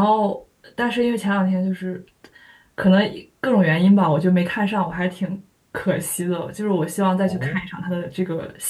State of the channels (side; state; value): both; identical; correlation 1.00